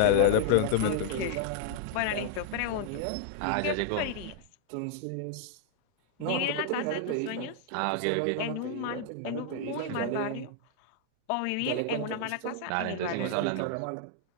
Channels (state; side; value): different; both; correlation -0.01